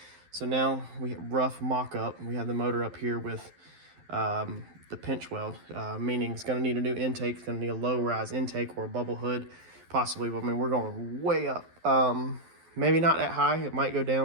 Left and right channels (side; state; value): left; late; 12 ms